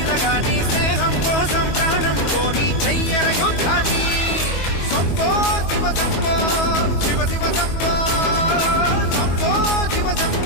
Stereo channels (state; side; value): late; right; 22 ms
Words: గాని స్నేహం కోసం ప్రాణం కోని చెయ్యర యుద్ధాన్ని శంభో శివ శంభో శివ శివ శంభో శంభో శివ